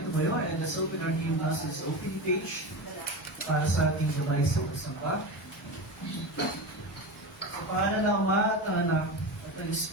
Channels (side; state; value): both; normal; correlation 0.24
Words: tumayo and let's open our new Masses opening page para sa ating gabay sa pasampa. Sa pangalan ng Ama at ng Anak at ng